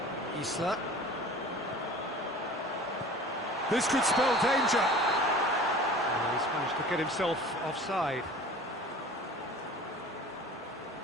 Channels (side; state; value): both; normal; correlation 0.42